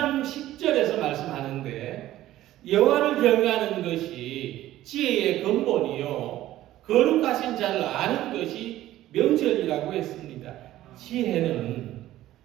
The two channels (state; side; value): quieter; left; 14.5 dB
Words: 10절에서 말씀하는데 여호와를 경외하는 것이 지혜의 근본이요 거룩하신 자를 아는 것이 명철이라고 했습니다. 지혜는